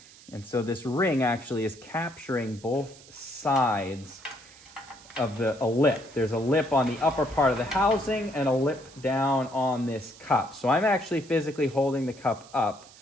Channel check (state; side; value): noise; right; hiss, 22 dB below the sound